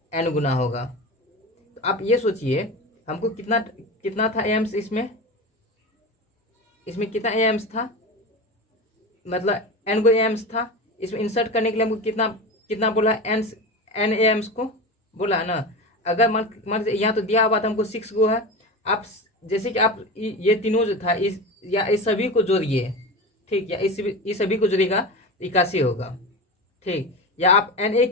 एन गुना होगा। तो आप ये सोचिए हमको कितना कितना था एम्स, इसमें कितना एम्स था, मतलब एन गो एम्स था, इसमें इंसर्ट करने के लिए हमको कितना कितना बोला, एन एम्स को बोला है ना। अगर मान यहाँ तो दिया हुआ था हमको 6 गो है, आप जैसे कि आप ये तीनों जो था इस सभी को जोड़िए, ठीक, या इस सभी को जोड़िएगा 81 होगा, ठीक, या आप एन ए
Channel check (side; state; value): both; normal; correlation 0.26